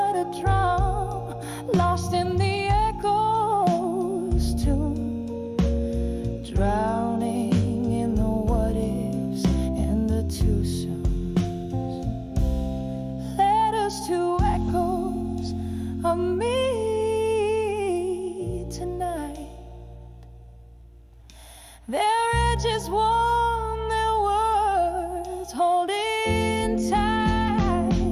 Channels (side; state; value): both; identical; correlation 1.00